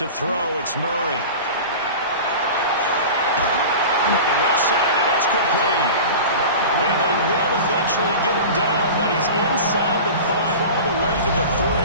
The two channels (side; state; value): both; inverted; correlation -0.33